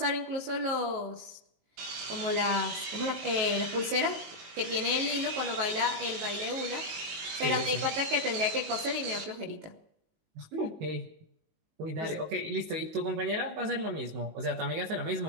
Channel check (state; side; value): late; left; 19 ms